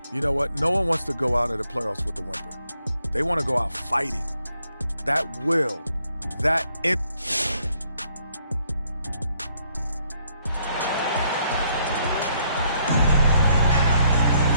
You know what? No one wants to go out of the playoffs with a whimper. They want to go out fighting. That will, that it.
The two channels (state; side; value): inverted; both; correlation -0.72